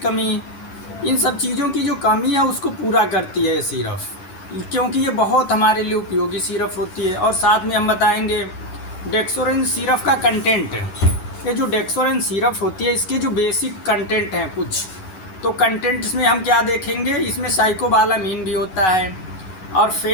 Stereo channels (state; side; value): late; right; 11 ms